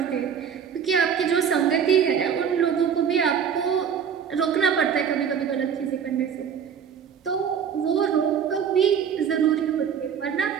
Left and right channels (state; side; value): quieter; left; 7.6 dB